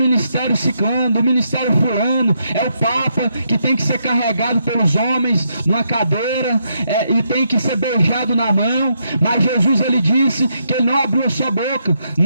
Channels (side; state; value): both; inverted; correlation -0.78